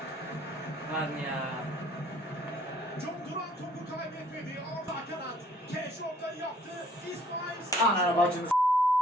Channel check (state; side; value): normal; both; correlation 0.60